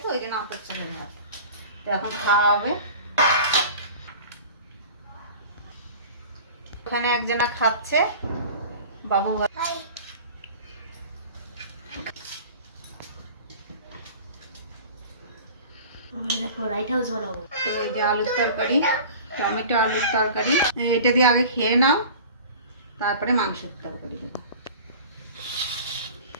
তো ওই জন্য আতপ চালের ভাত। তো এখন খাওয়া হবে। ওখানে একজনা খাচ্ছে, বাবু। লাইট হাউস বানাবো। তো এই যে আলুর তরকারি, টমেটো আলুর তরকারি, এটা দিয়ে আগে খেয়ে নাও, তারপরে মাংসের তরকারি দেবো।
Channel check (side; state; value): both; inverted; correlation -0.40